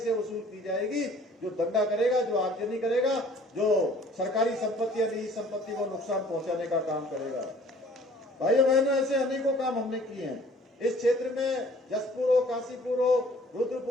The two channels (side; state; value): both; normal; correlation 0.53